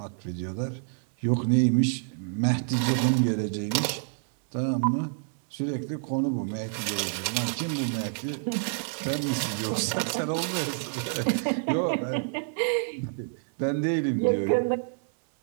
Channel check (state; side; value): silent; left; digital silence